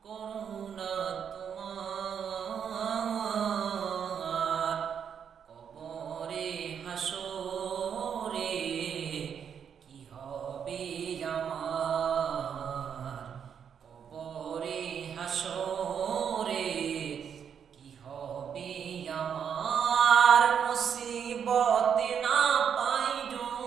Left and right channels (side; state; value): left; quieter; 7.7 dB